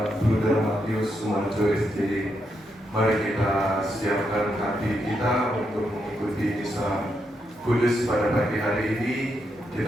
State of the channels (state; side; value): normal; both; correlation 0.81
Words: Bruder Matius Sumarjo SJ. Mari kita siapkan hati kita untuk mengikuti misa kudus pada pagi hari ini.